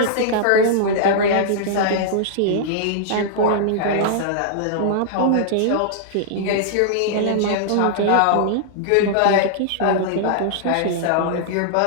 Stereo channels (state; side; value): different; both; correlation -0.01